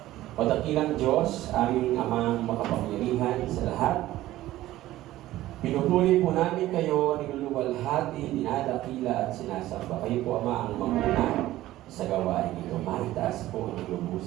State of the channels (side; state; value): left; quieter; 15.4 dB